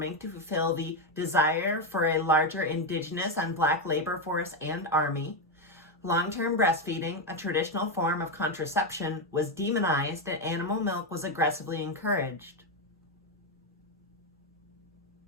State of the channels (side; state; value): both; normal; correlation 0.07